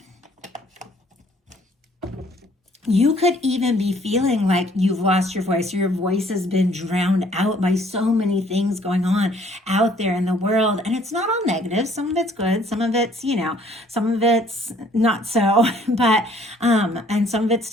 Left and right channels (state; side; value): normal; both; correlation 0.60